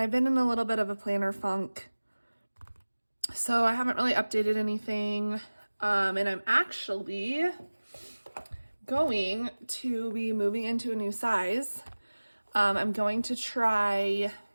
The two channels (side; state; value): both; inverted; correlation -1.00